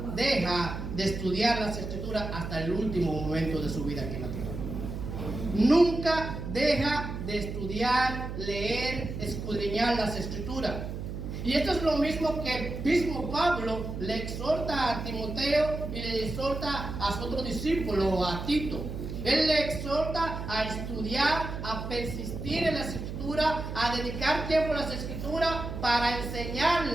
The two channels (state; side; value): noise; right; hum, 6 dB below the sound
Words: deja de estudiar las Escrituras hasta el último momento de su vida aquí en la tierra. Nunca deja de estudiar, leer, escudriñar las Escrituras. Y esto es lo mismo que el mismo Pablo le exhorta a Timoteo y le exhorta a su otro discípulo, a Tito. Él le exhorta a estudiar, a persistir en las Escrituras, a dedicar tiempo a las Escrituras para enseñar